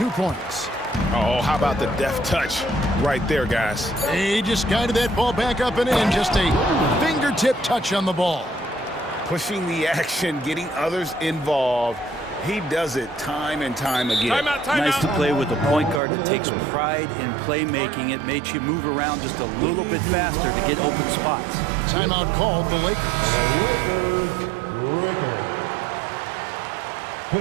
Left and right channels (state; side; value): drops out; left; at 16.0 s